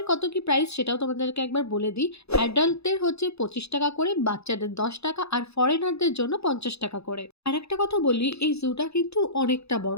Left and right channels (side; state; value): right; late; 0.79 ms